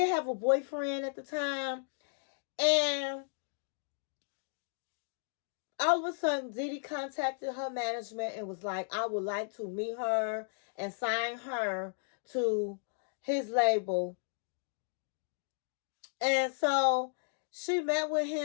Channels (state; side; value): silent; right; digital silence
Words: have a boyfriend at the time. And all of a sudden, Diddy contacted her management and was like, I would like to meet her and sign her to his label. And so she met with